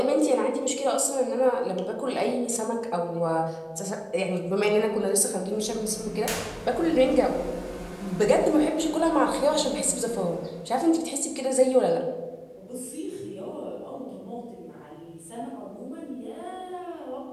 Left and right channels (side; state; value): both; identical; correlation 1.00